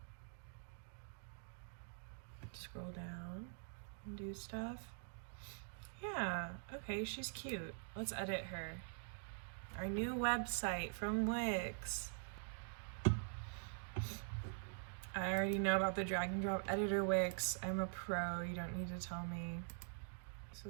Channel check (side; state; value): left; silent; digital silence